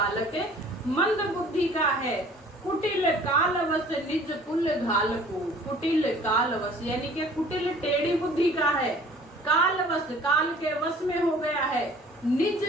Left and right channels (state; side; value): normal; both; correlation 0.51